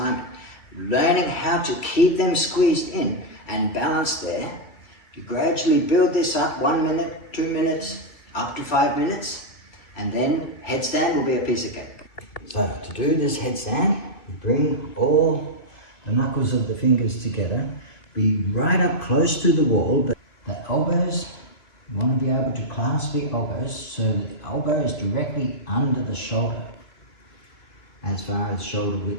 Learning how to keep them squeezed in and balanced there. You gradually build this up 1 minute, 2 minutes, up to 5 minutes, and then headstand will be a piece of cake. So to do this headstand, you bring all the knuckles of the fingers together, be right up close to the wall, but the elbows, you want to be able to clasp the elbows so that the elbow is directly under the shoulder, as far as shoulder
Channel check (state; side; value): late; right; 2.4 ms